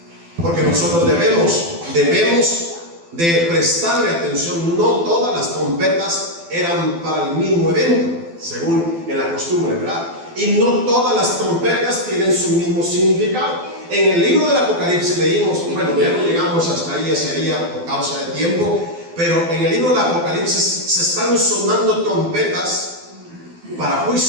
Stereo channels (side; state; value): left; late; 12 ms